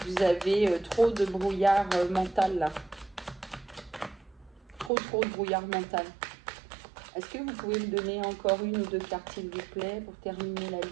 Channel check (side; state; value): left; drops out; at 4.9 s